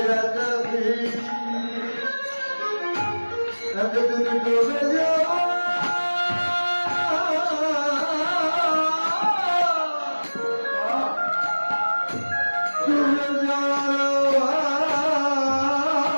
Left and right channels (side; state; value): both; inverted; correlation -1.00